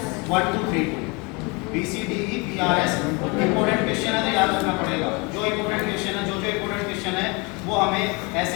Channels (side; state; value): right; quieter; 28.9 dB